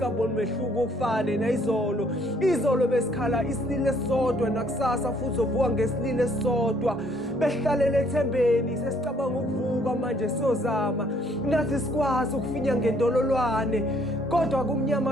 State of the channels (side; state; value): both; normal; correlation 0.64